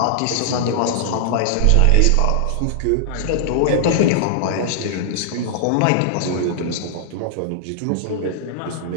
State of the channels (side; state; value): both; different; correlation -0.01